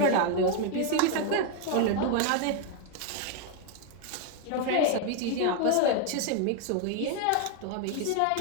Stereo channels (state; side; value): different; both; correlation 0.01